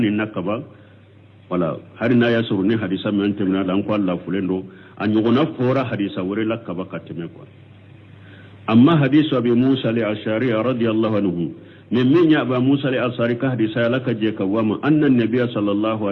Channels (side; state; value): both; identical; correlation 1.00